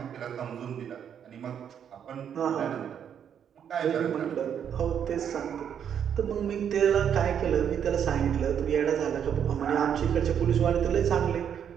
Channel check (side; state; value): left; quieter; 8.5 dB